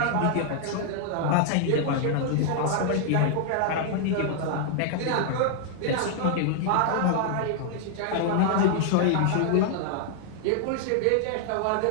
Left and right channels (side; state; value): both; different; correlation 0.00